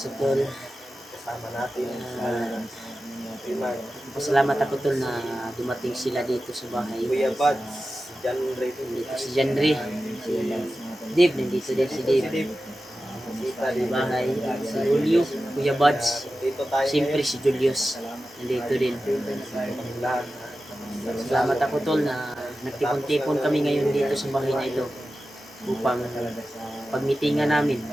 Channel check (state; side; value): normal; both; correlation 0.94